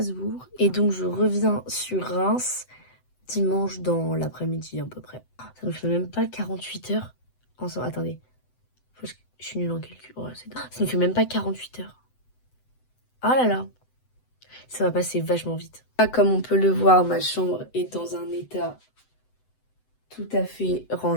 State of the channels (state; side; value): late; right; 7.9 ms